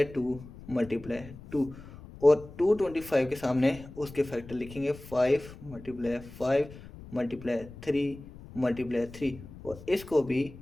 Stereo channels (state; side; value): noise; left; rumble, 17 dB below the sound